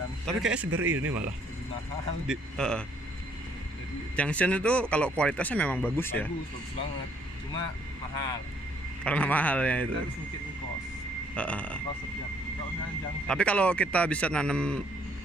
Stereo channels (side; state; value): both; normal; correlation 0.65